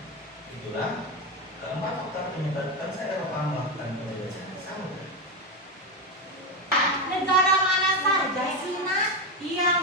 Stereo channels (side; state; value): both; normal; correlation 0.12